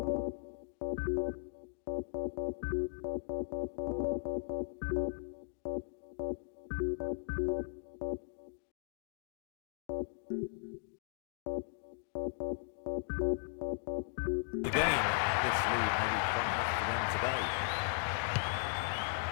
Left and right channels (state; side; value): silent; right; digital silence